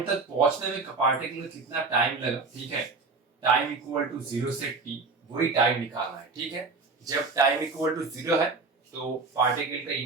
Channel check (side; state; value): left; quieter; 4.1 dB